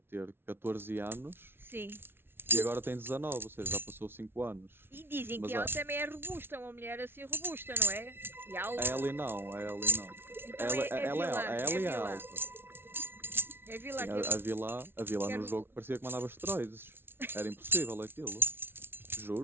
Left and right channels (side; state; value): left; late; 0.11 ms